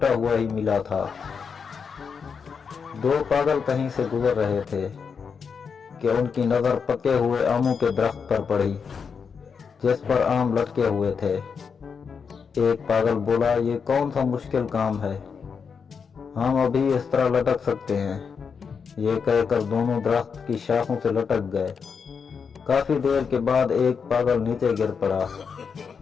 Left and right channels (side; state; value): right; quieter; 6.1 dB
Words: हुआ ही मिला था। 2 पागल कहीं से गुजर रहे थे कि उनकी नजर पके हुए आमों के दरख्त पर पड़ी जिस पर आम लटके हुए थे। एक पागल बोला, ये कौन सा मुश्किल काम है, हम अभी इस तरह लटक सकते हैं। ये कहकर दोनों दरख्त की शाखों से लटक गए। काफी देर के बाद एक पागल नीचे गिर पड़ा।